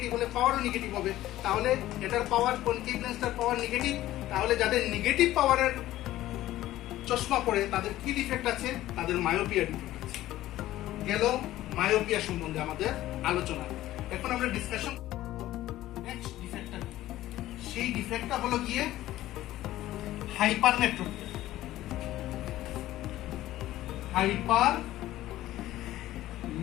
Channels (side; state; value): right; quieter; 15.0 dB